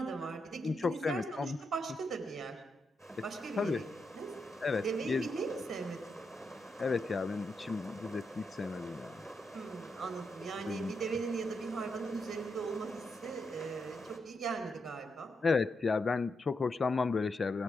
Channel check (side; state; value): both; normal; correlation 0.83